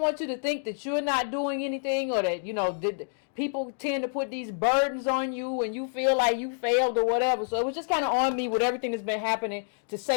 you to think that you're not doing anything, or that people tend to put these burdens on you and you feel like you failed or whatever. So it was just kind of on me with everything that's been happening to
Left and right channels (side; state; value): right; silent; digital silence